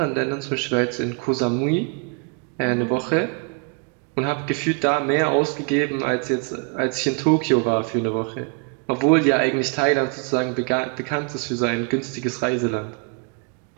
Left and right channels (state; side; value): quieter; left; 33.9 dB